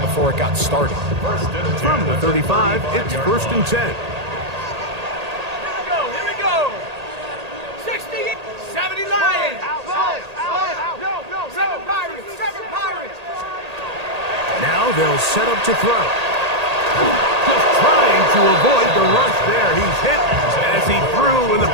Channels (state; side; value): late; left; 1.8 ms